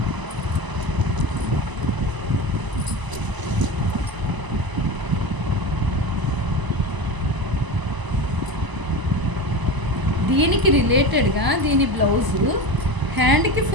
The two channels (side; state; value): left; late; 1.0 ms